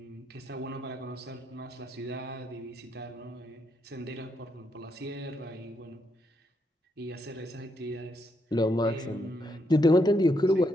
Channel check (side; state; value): both; normal; correlation 0.78